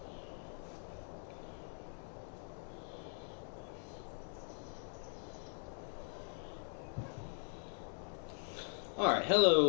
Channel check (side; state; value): right; silent; 51 dB below the other